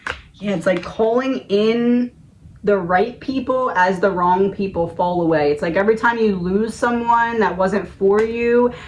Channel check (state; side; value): identical; both; correlation 1.00